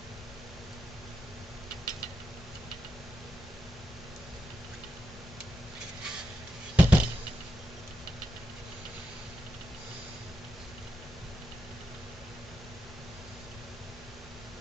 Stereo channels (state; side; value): normal; both; correlation 0.86